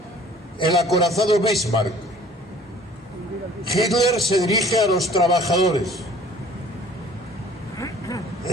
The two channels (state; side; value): normal; both; correlation 0.51